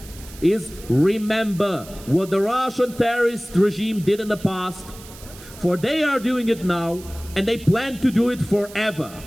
is remember what the Russian terrorist regime did in the past, for they are doing it now, and they plan to do it forever,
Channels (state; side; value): noise; right; hiss, 18 dB below the sound